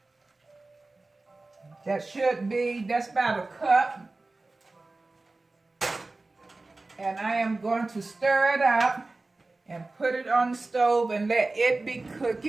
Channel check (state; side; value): quieter; left; 3.3 dB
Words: That's about a cup. And I am going to stir it up and put it on the stove and let it be